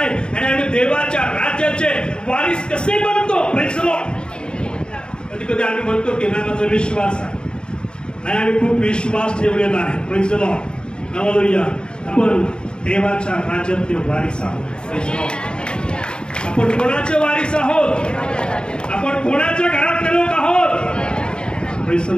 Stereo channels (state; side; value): late; right; 0.050 ms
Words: आणि आम्ही देवाच्या राज्याचे वारीस कसे बनतो. Praise the Lord. कधी कधी आम्ही म्हणतो की नाही माझा विश्वास आहे, नाही आम्ही खूप विश्वास ठेवलेला आहे. Praise the lord. हालेलुया. आपण देवाच्या राज्यातले वारीस आहोत. Praise the Lord. आपण कोणाचे वारीस आहोत? आपण कोणाच्या घरातले लोक आहोत? Praise the